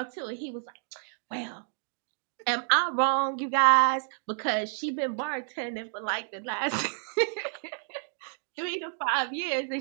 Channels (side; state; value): left; silent; digital silence